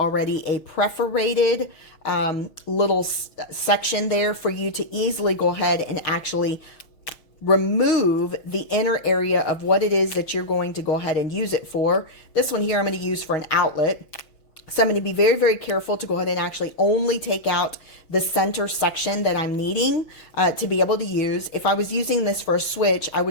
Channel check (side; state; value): right; late; 6.2 ms